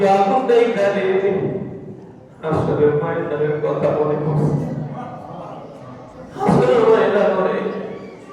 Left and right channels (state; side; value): identical; both; correlation 1.00